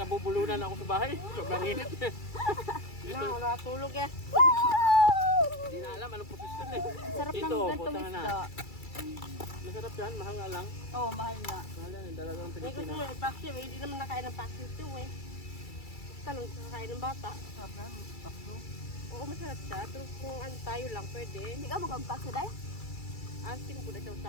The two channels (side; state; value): right; late; 2.3 ms